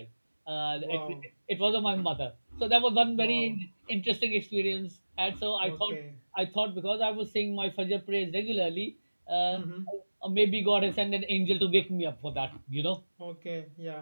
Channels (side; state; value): both; inverted; correlation -1.00